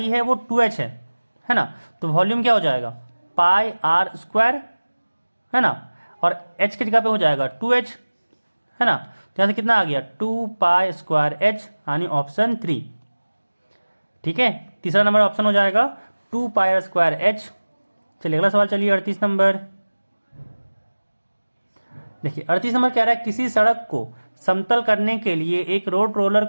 है वो 2h है ना। तो वॉल्यूम क्या हो जाएगा, पाई r स्क्वायर, है ना, और h की जगह पे हो जाएगा 2h, है ना। तो यहाँ से कितना आ गया 2 पाई स्क्वायर h, यानी ऑप्शन 3, ठीक है। तीसरा नंबर ऑप्शन हो जाएगा 2 पाई स्क्वायर h। चलिए अगला सवाल, चलिए 38 नंबर देखिए। 38 नंबर कह रहा है किसी सड़क को समतल करने के लिए एक रोड रोलर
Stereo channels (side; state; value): both; inverted; correlation -1.00